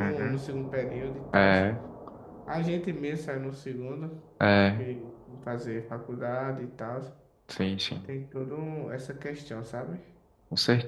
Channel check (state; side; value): identical; both; correlation 1.00